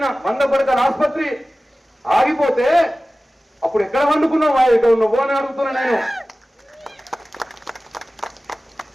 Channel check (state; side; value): normal; both; correlation 0.96